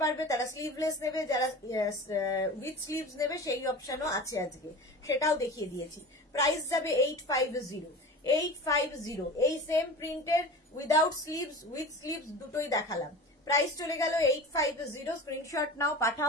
পারবে তারা স্লিভলেস নেবে, যারা উইথ স্লিভস নেবে সেই অপশনও আছে আজকে, সেটাও দেখিয়ে দিয়েছি। প্রাইস যাবে 850, 850, এই সেম প্রিন্টের উইদাউট স্লিভস উইথ স্লিভস দুটোই দেখালাম, প্রাইস চলে গেল 850, স্ক্রিনশট নাও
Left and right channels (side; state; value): both; normal; correlation 0.34